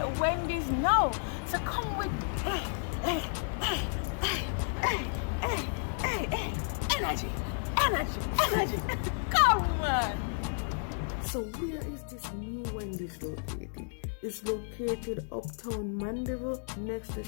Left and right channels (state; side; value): silent; right; digital silence